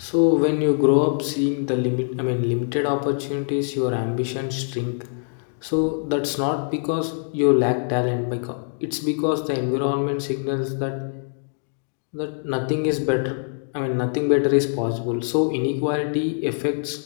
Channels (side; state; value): right; silent; digital silence